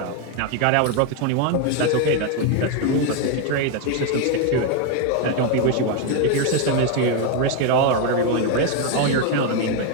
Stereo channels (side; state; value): both; different; correlation 0.02